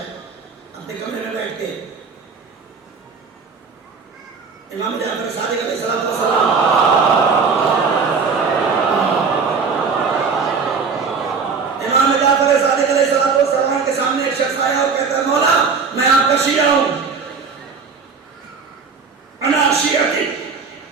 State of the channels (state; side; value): quieter; left; 5.2 dB